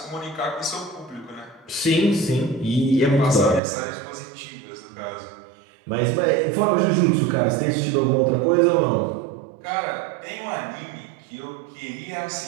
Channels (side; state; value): left; drops out; at 3.6 s